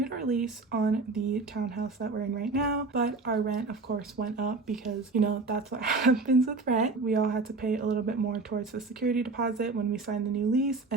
our lease on the townhouse that we're in right now, but our rent of course went up because that's what happens with rent. We all had to pay a little bit more towards the security deposit when we signed the new lease,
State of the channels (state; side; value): quieter; left; 3.7 dB